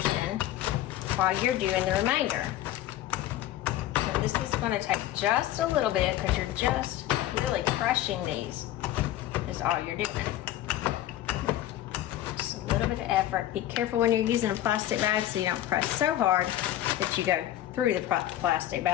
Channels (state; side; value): quieter; right; 13.5 dB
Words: while you're doing the remainder. So this is going to take just a little bit, because you're just really crushing these. Is all you're doing. A little bit of effort. Be careful when you're using a plastic bag so you don't press so hard that you go through the plastic